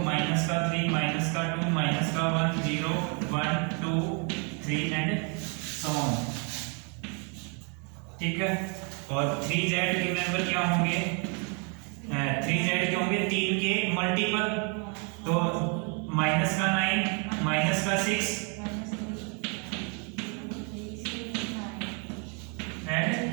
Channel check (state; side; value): quieter; left; 36.2 dB